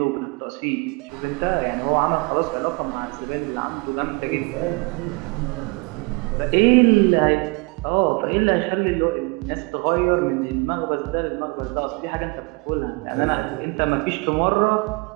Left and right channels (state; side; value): quieter; left; 28.2 dB